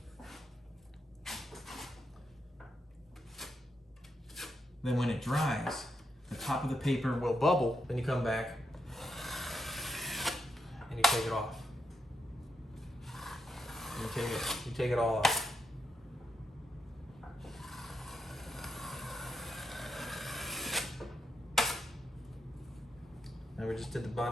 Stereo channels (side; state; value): both; normal; correlation 0.84